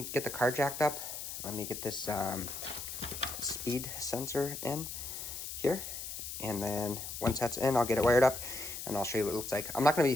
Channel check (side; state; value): left; noise; hiss, 7 dB below the sound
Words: get the car jacked up. Let me get this speed sensor in here. And then once that's in, I'll get it wired up and I'll show you what it looks like. I'm not going to